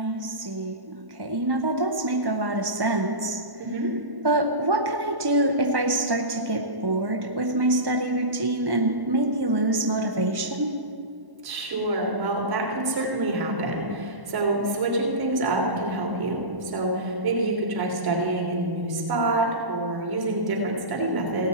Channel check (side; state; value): left; late; 1.1 ms